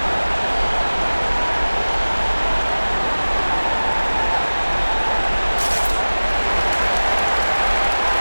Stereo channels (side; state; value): both; inverted; correlation -1.00